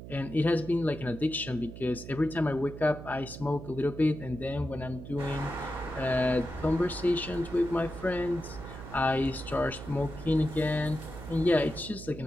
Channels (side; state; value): right; noise; hum, 12 dB below the sound